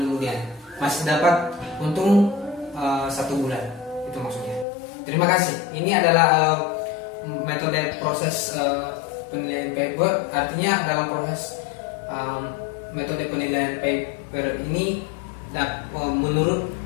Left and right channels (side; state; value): right; drops out; at 4.7 s